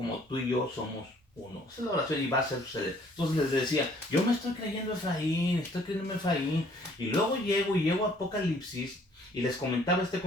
tú y yo somos uno. Esa es la oración y va a suceder. Entonces les decía, yo me estoy creyendo Efraín, estoy creyendo Efraín. Y luego llego a Apocalipsis y les comentaba este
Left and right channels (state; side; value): normal; both; correlation 0.60